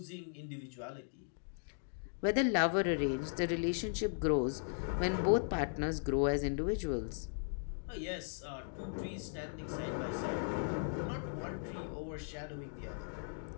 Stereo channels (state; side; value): silent; right; digital silence